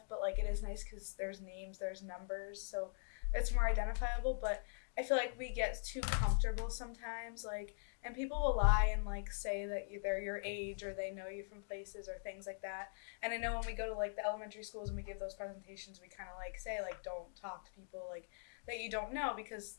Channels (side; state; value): right; silent; digital silence